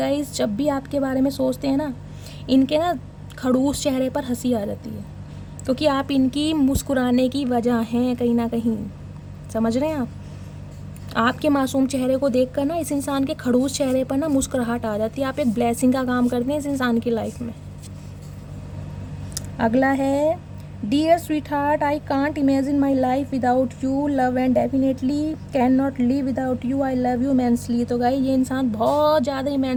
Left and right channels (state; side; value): identical; both; correlation 1.00